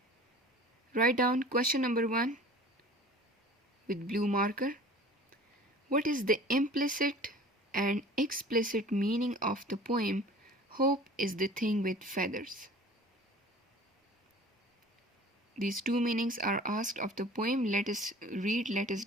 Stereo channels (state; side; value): normal; both; correlation 0.44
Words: Write down question number 1 with blue marker. What is the implicit and explicit meaning of the poem Hope is the Thing with Feathers? These two meanings are asked of the poem. Let us read, let us